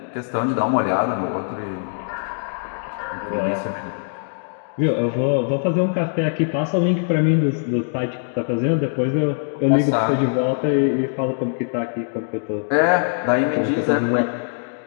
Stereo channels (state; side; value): silent; right; digital silence